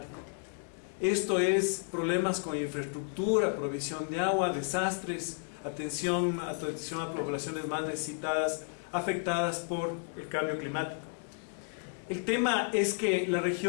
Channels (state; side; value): silent; right; 56 dB below the other